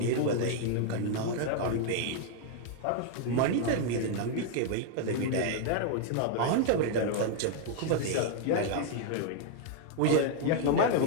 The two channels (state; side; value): different; both; correlation 0.00